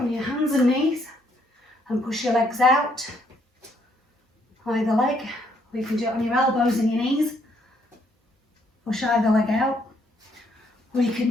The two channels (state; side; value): normal; both; correlation 0.70